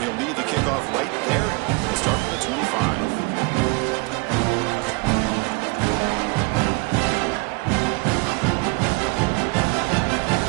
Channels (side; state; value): left; quieter; 28.0 dB